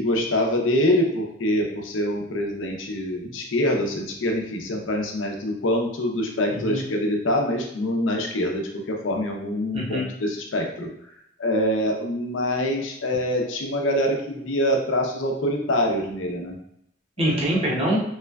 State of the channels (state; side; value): normal; both; correlation 0.22